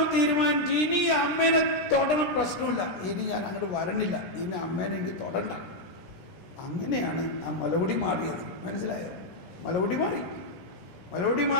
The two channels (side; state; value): right; late; 17 ms